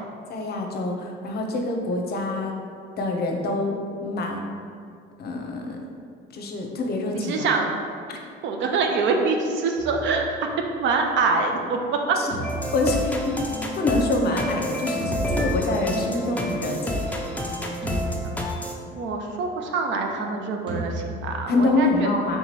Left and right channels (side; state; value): both; normal; correlation 0.33